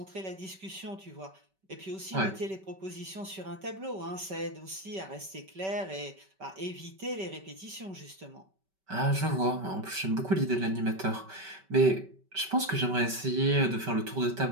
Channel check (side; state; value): left; late; 5.2 ms